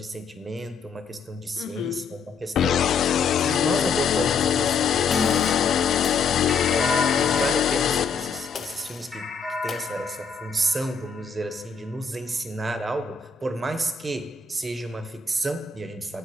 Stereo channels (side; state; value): right; quieter; 5.1 dB